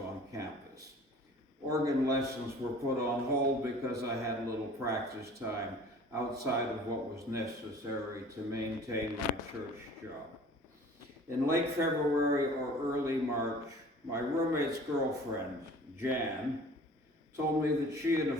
campus. Organ lessons were put on hold because I had little practice time outside of what was necessary to maintain my church job. In late February or early March, my roommate's girlfriend, Jan, told me that she and a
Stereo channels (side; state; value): both; normal; correlation 0.47